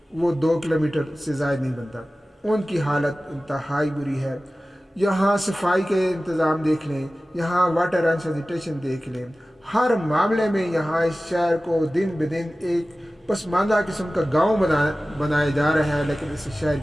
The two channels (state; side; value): normal; both; correlation 0.96